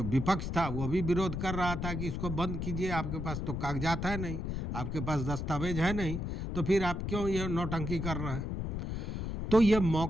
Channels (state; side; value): noise; left; rumble, 3 dB below the sound